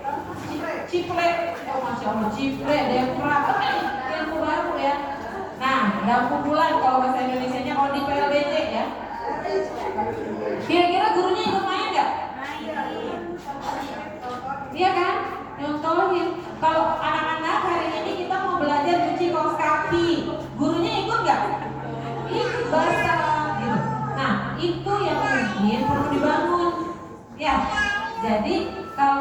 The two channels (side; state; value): both; identical; correlation 1.00